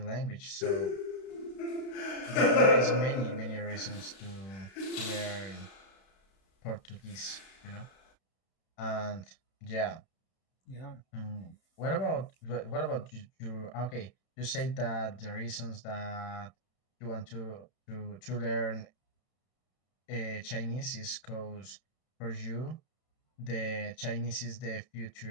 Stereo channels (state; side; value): late; right; 32 ms